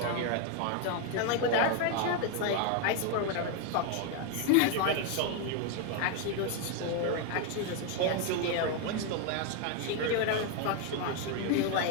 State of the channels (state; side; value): different; both; correlation 0.01